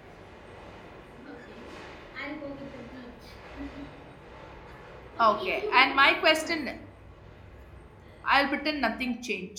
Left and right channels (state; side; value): identical; both; correlation 1.00